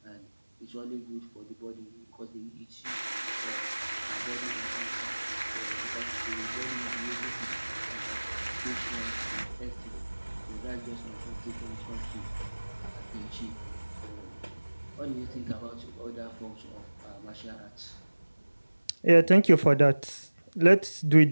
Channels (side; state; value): both; inverted; correlation -1.00